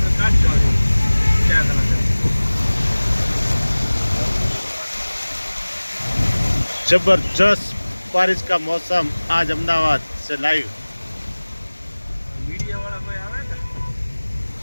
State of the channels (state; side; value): inverted; both; correlation -1.00